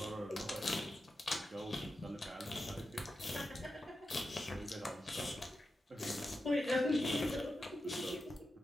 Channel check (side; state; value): both; normal; correlation 0.90